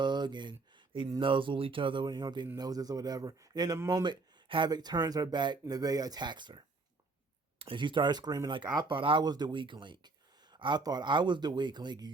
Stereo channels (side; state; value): left; quieter; 3.7 dB